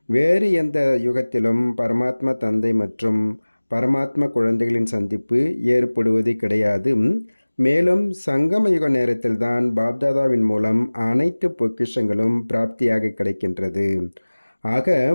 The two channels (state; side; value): inverted; both; correlation -1.00